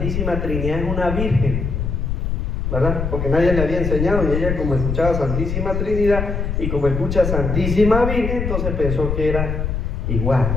Trinidad es una virgen, ¿verdad? Porque nadie le había enseñado y ella, como escuchaba Santísima Trinidad y como escucha Santísima Virgen, entonces pensó que era igual,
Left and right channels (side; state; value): left; noise; rumble, 2 dB below the sound